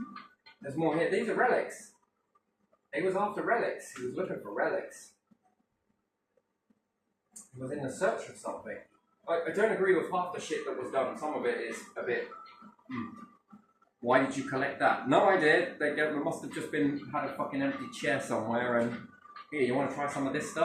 There's more here. These are relics. He was after relics. He was looking for relics. He was in the search of something. I don't agree with half the shit that was done. Some of it is a bit... Why did you collect that? No, I did. They must have just had a fucking empty chair somewhere and... Here, you want to try some of this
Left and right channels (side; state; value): both; identical; correlation 1.00